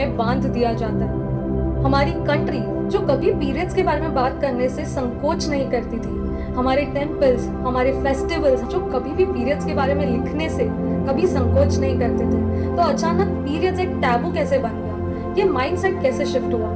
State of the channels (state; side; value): identical; both; correlation 1.00